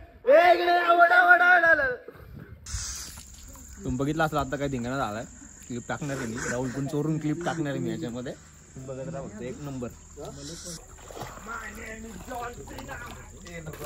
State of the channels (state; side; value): identical; both; correlation 1.00